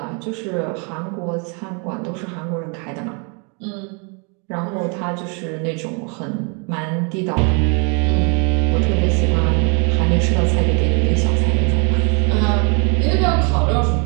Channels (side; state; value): left; quieter; 35.6 dB